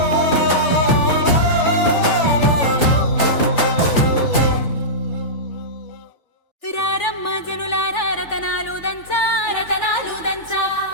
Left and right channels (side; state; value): right; late; 3.4 ms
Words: రారమ్మ జనులారా రతనాలు దంచా రతనాలు దంచా